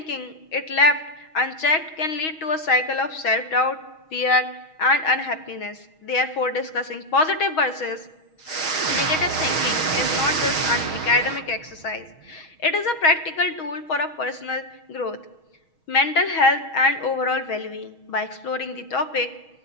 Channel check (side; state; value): right; late; 6.3 ms